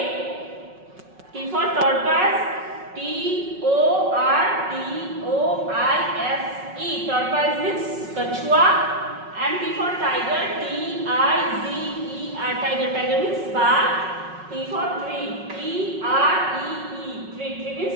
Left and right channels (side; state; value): left; late; 5.4 ms